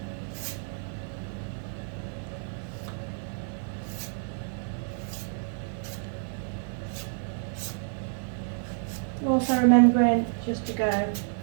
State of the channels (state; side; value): silent; left; digital silence